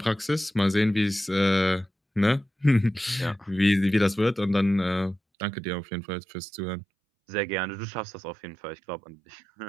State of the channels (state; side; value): drops out; left; at 5.2 s